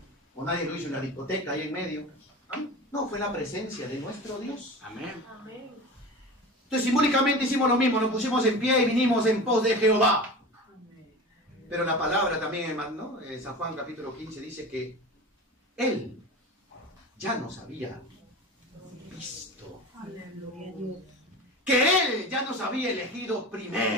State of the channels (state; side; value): normal; both; correlation 0.32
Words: O nadie lo hizo en la discoteca ahí en medio. Amén. No, fue la presencia de nuestro Dios. Amén. Amén. Entonces simbólicamente hicimos lo mismo, nos pusimos en pie y vinimos en pos de Jehová. Pero la palabra también, ¿no? San Juan capítulo 15 dice que Él ya nos había visto. Que Él ya nos había elegido